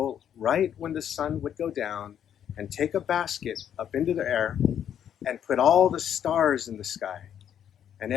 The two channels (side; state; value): right; quieter; 9.4 dB